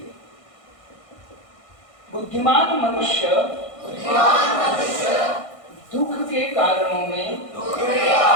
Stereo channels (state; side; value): late; right; 1.6 ms